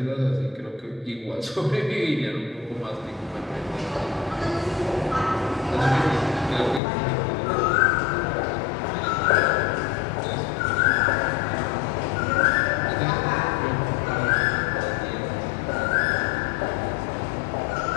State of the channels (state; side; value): drops out; right; at 6.8 s